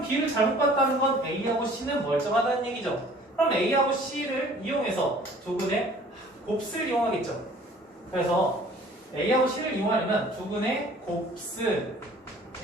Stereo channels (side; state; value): both; normal; correlation 0.51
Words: B를 잘못 봤다는 건 A하고 C는 멀쩡하다는 얘기죠. 그럼 A하고 C를 이용해서 두근의 곱슬 이용하겠죠. 그래서 A하고 C를 이용하려면 두근의 곱슬